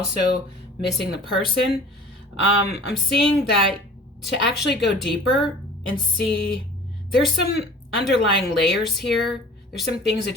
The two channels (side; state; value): both; normal; correlation 0.44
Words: missing the person. I'm seeing that to actually go deeper and see, there's some underlying layers here. There's some things